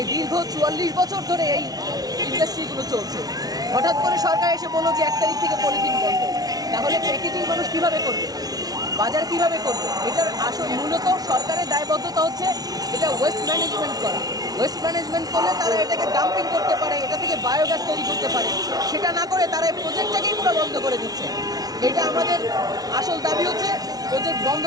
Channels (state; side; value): late; left; 0.19 ms